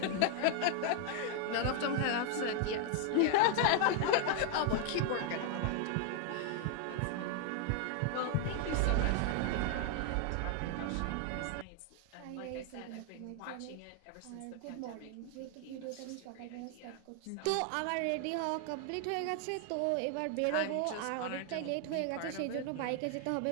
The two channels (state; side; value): different; both; correlation 0.00